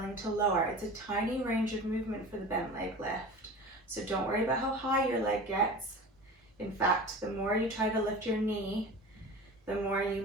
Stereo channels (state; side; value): normal; both; correlation 0.35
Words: to lower. It's a tiny range of movement for the bent leg lift, so don't worry about how high your leg gets. In fact, the more you try to lift your knee, the more you